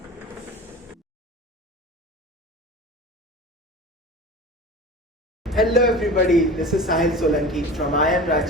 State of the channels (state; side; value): normal; both; correlation 0.34